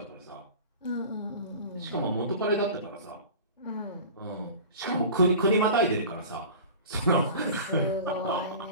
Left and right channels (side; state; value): both; inverted; correlation -0.37